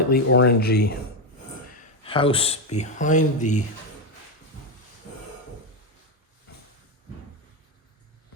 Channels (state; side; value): normal; both; correlation 0.08